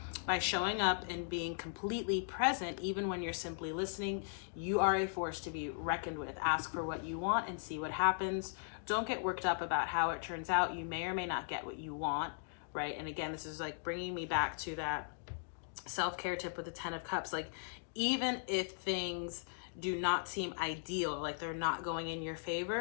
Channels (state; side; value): silent; right; digital silence